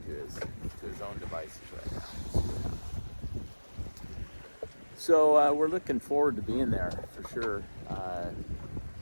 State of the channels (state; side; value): inverted; both; correlation -1.00